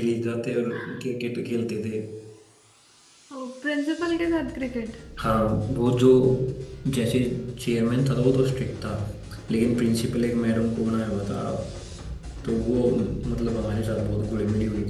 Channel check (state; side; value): identical; both; correlation 1.00